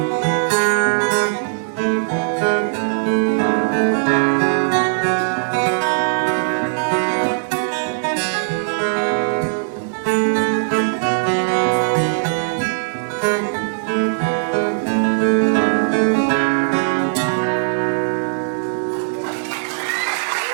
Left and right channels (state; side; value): silent; left; digital silence